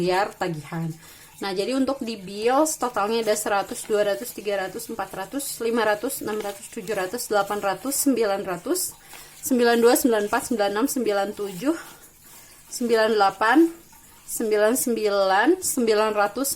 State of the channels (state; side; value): identical; both; correlation 1.00